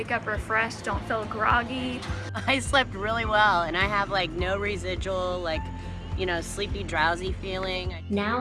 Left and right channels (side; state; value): both; identical; correlation 1.00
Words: up refreshed, don't feel groggy. I slept really well, and I have like no residual, sleepy, drowsy feeling.